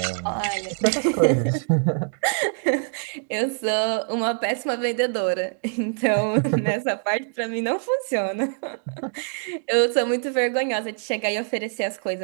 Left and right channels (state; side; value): silent; left; digital silence